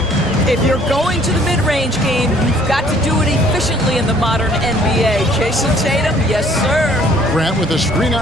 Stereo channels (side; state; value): both; normal; correlation 0.58